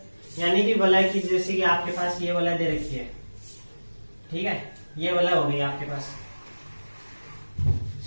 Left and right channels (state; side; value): inverted; both; correlation -1.00